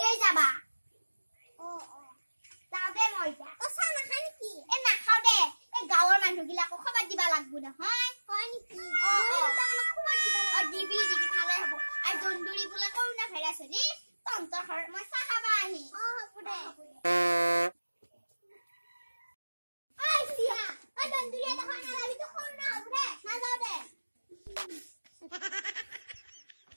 যাবা ও যাবে মই যা তো চা না খানি কি এ না খাও দে এ গাঁৱৰ মানুহগিলাকো খবৰ দিবা লাগবো না হয় নেকি ও খবৰ দিবা লাগবো দিবি খালে হ'ব আৰু দন্দুৰি বলা কৰোনা ভাইৰাছ নি তন্তৰ ঘৰ মই চাহ খাবা আহি হ'ব দে আই সিয়া আ দন্দুরি এটা খানা লাগি তো কৰোনা হ'ব দে না যাও দে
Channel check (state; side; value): inverted; both; correlation -1.00